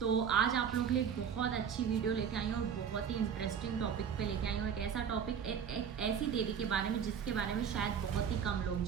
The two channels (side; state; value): left; quieter; 7.6 dB